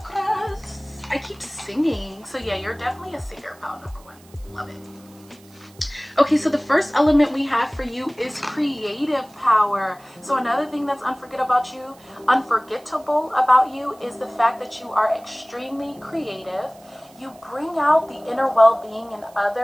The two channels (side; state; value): right; noise; hiss, 27 dB below the sound